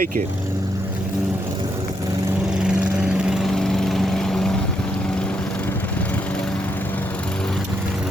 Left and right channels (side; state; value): both; normal; correlation 0.78